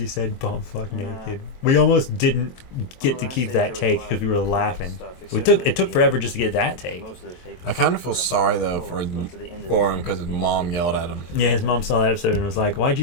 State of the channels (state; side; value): late; right; 23 ms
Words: said bumfuck naked. We almost didn't get to keep that take because we were laughing. It took forever just to get that take. I kind of feel sorry though for him because his mom yelled at him. Yeah, his mom saw that episode and was like, "Why'd